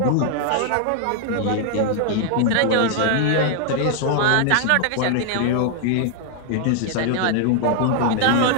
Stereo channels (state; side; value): different; both; correlation 0.00